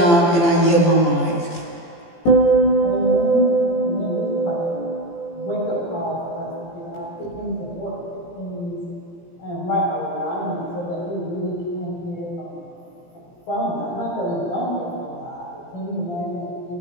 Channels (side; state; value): right; late; 17 ms